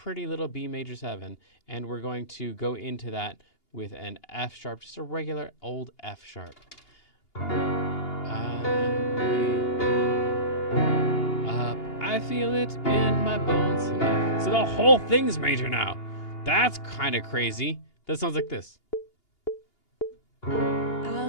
little B major 7, and we're going to go into that with an F sharp, just a regular old F sharp. I feel it in my bones. So the whole thing's major now. That's kind of crazy. That sounds like this.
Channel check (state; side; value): late; right; 2.8 ms